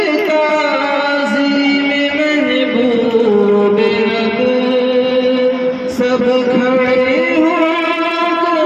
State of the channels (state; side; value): identical; both; correlation 1.00